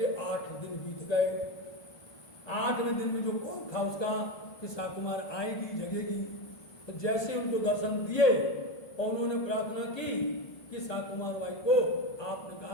8 दिन बीत गए। 8वें दिन में जो कौन था उसका कि शाकुमार आएगी, जगेगी। तो जैसे उनको दर्शन दिए और उन्होंने प्रार्थना की कि साकुमार बाई को आपने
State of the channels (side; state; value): right; late; 1.2 ms